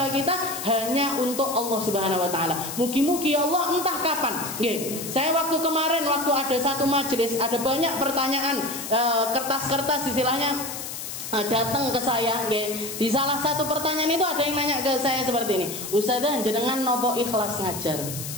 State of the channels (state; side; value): noise; left; hiss, 8 dB below the sound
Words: kita hanya untuk Allah Subhanahu wa Ta'ala. Mugi-mugi Allah entah kapan. Saya waktu kemarin ada satu majelis, ada banyak pertanyaan, kertas-kertas istilahnya datang ke saya. Di salah satu pertanyaan itu ada yang nanya ke saya seperti ini, "Ustazah, jenengan nopo ikhlas ngajar?"